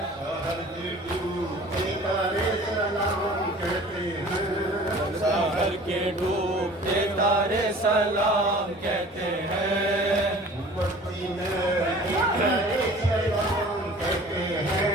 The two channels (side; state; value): both; normal; correlation 0.46